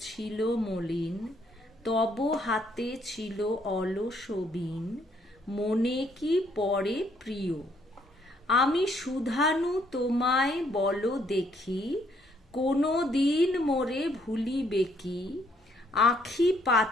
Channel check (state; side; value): normal; both; correlation 0.69